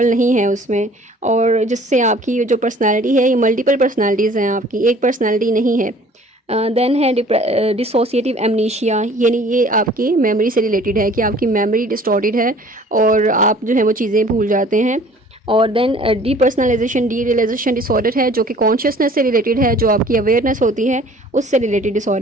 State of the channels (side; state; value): both; normal; correlation 0.51